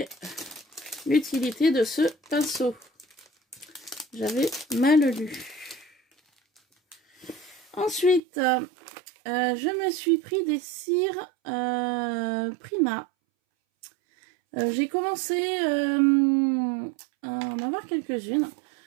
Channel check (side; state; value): left; drops out; at 8.2 s